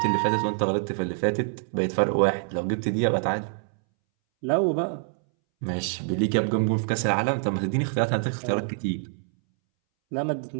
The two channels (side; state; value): left; silent; 61 dB below the other